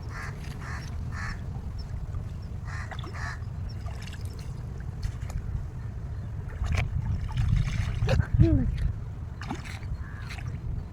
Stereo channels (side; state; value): both; identical; correlation 1.00